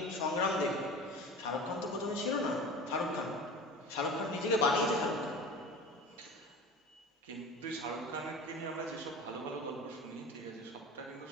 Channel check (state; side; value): normal; both; correlation 0.35